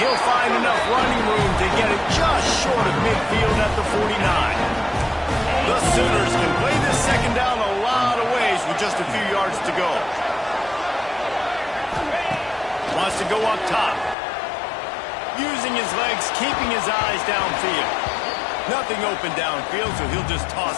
find enough running room to get it just short of midfield at the 49. The Sooners can play this second down a lot of ways with just a few yards to go. Wants to go up top. Using his legs, keeping his eyes downfield. Nothing open downfield, so he'll just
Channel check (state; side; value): drops out; right; at 14.2 s